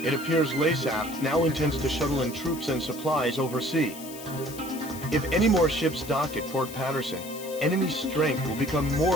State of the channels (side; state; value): left; noise; hiss, 14 dB below the sound